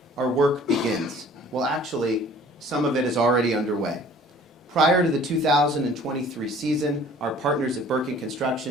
Our work begins. Well, actually, some of it is already underway. Prior to the 2023 season, our partners at Birkin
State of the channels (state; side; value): normal; both; correlation 0.51